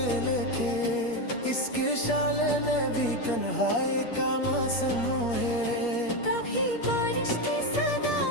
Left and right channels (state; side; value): late; right; 8.5 ms